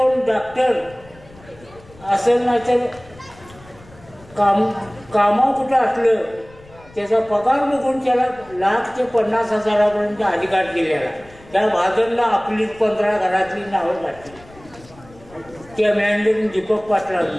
डॉक्टर असेल नाही तर कामा कुठं असलं त्याचा पगार बघून त्याला 1 लाख ते 50 हजारापर्यंत अधिकार दिलेला. त्या भाजपला आपली 15 घरातली नावं घातली. त्या मॅनेजर दीपक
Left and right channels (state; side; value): noise; left; rumble, 23 dB below the sound